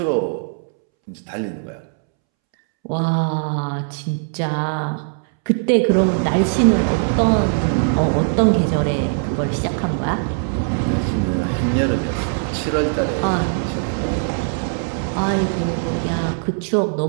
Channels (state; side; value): silent; left; 66 dB below the other